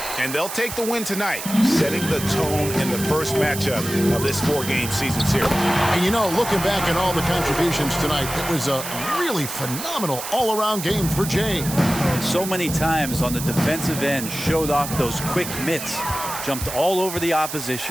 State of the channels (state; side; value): noise; right; hiss, 8 dB below the sound